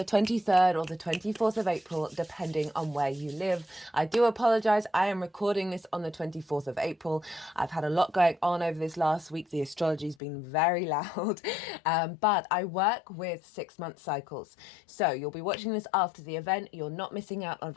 23rd or the 24th of April, depending on where you live. I do apologize. I am recording this on the 24th of April. I've had a lot going on over this last week. The astrology's been very loud, but I work with 6-month cycles. So you'll be watching this after the event. You're not missing out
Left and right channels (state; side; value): drops out; right; at 10.2 s